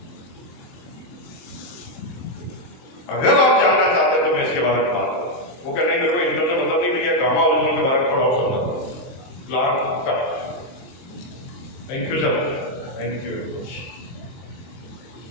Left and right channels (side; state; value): right; late; 23 ms